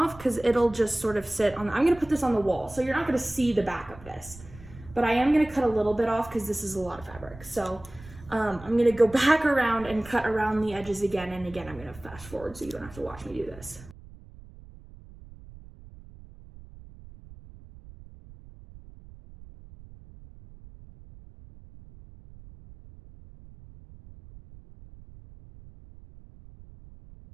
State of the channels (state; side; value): noise; right; rumble, 19 dB below the sound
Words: because it'll just sort of sit on, I'm gonna put this on the wall, so you're not gonna see the back of this. But I am gonna cut a little bit off because this is a lot of fabric. So I'm gonna go back around and cut around the edges again, and again, I'm gonna fast forward so you don't have to watch me do this.